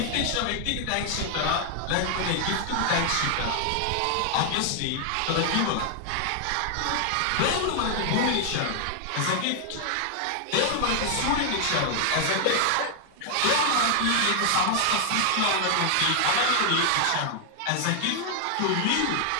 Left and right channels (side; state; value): both; different; correlation 0.00